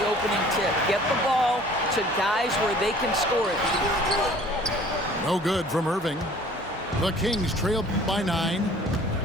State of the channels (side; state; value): both; normal; correlation 0.51